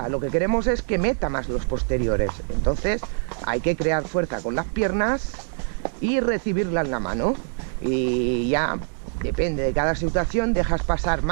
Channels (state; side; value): silent; left; 63 dB below the other